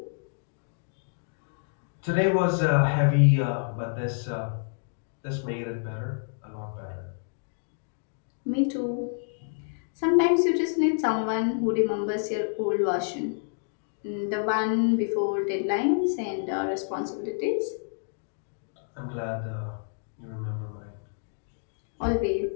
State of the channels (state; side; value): silent; right; digital silence